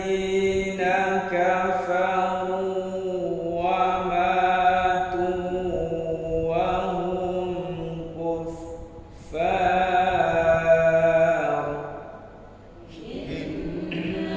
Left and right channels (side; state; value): both; identical; correlation 1.00